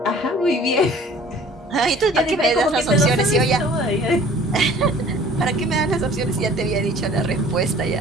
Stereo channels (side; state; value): both; normal; correlation 0.50